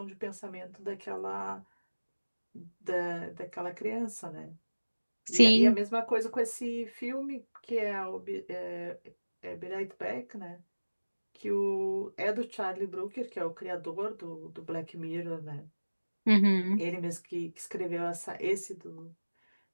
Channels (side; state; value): both; inverted; correlation -1.00